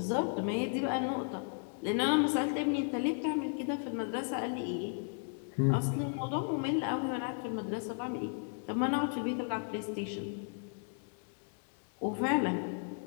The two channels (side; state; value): right; silent; 55 dB below the other